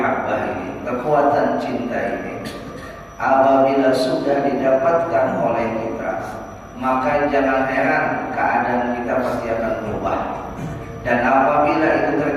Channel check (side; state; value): both; identical; correlation 1.00